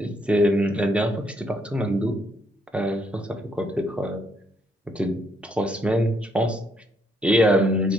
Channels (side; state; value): both; normal; correlation 0.72